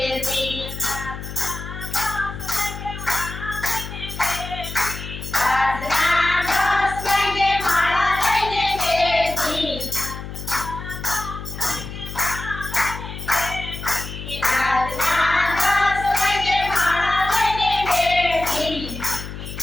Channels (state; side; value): noise; left; hum, 9 dB below the sound